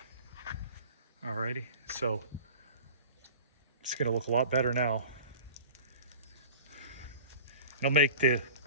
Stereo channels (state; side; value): inverted; both; correlation -0.40